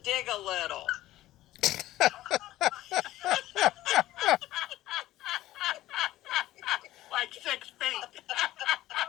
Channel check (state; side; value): quieter; right; 15.4 dB